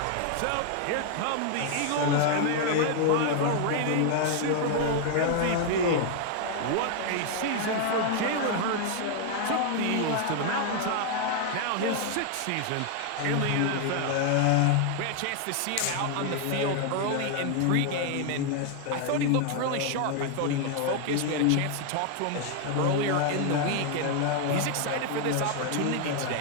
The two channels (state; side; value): different; both; correlation 0.00